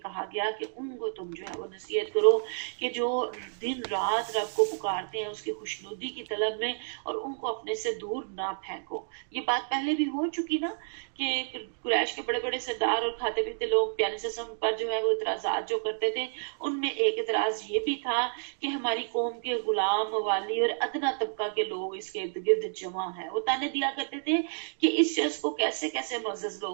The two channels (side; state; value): left; silent; digital silence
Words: گیا کہ ان کو تم جو ہے وہ نصیحت کرو کہ جو دن رات رب کو پکارتے ہیں اس کی خوشنودی کی طلب میں، اور ان کو اپنے سے دور نہ پھینکو۔ یہ بات پہلے بھی ہو چکی نا کہ قریش کے بڑے بڑے سردار اور کھاتے پیتے لوگ پیارے سسم پر جو ہے وہ اعتراضات جو کرتے تھے، ان میں ایک اعتراض یہ بھی تھا کہ ہماری قوم کے غلام، موالی اور ادنا طبقہ کے لوگ اس کے ارد گرد جمع ہیں۔ وہ تانے دیا کرتے تھے کہ اس شخص کو کیسے کیسے معزز